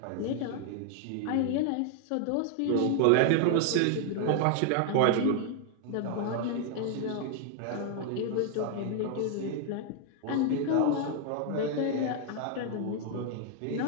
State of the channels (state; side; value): different; both; correlation 0.00